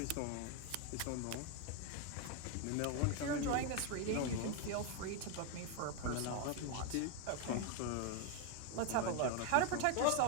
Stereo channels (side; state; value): both; different; correlation 0.01